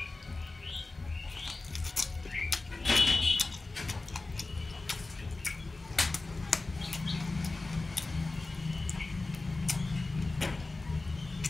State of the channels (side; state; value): right; quieter; 3.3 dB